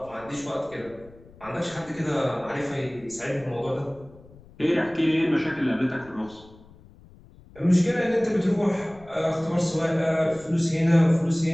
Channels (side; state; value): left; noise; rumble, 23 dB below the sound